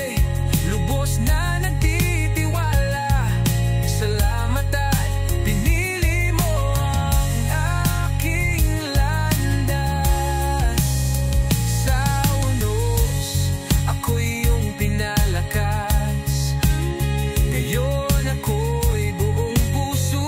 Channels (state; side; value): identical; both; correlation 1.00